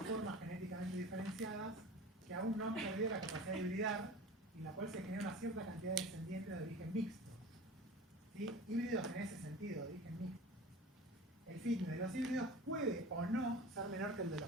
formas genéticamente diferenciadas que aún no han perdido la capacidad de hibridar y en la cual se genera una cierta cantidad de descendientes de origen mixto. ¿Sí? Híbridos en ese sentido, de origen mixto. El fitness de los híbridos puede o no ser menor que el de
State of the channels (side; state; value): both; normal; correlation 0.37